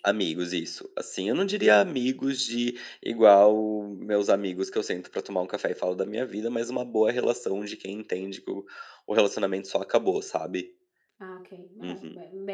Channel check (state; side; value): identical; both; correlation 1.00